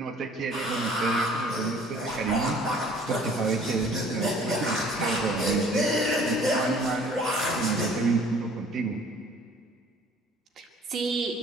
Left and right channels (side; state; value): both; normal; correlation 0.53